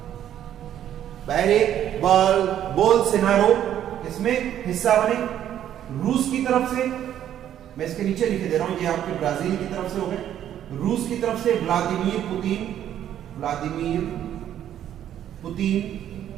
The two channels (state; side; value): quieter; left; 10.8 dB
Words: बोल्सोनारो इसमें हिस्सा बने। रूस की तरफ से, मैं इसके नीचे लिखे दे रहा हूं, ये आपके ब्राजील की तरफ से हो गए। रूस की तरफ से व्लादिमीर